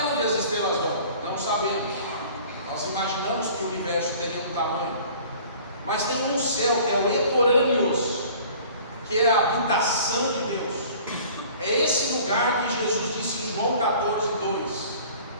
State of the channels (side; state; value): both; inverted; correlation -0.48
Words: onde as estrelas vão? Não sabemos. Nós imaginamos que o universo tenha um tamanho. Mas tem um céu que é o Etorâneos, que é a habitação de Deus. É esse lugar que Jesus disse em João 14:2.